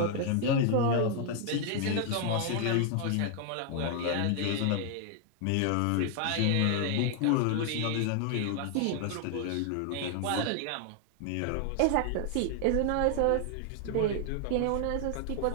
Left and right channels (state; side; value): different; both; correlation 0.00